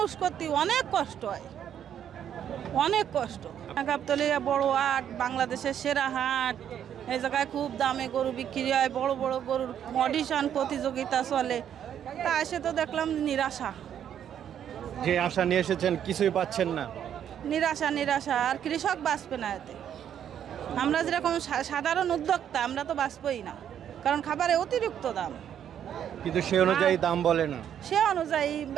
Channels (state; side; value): quieter; left; 9.5 dB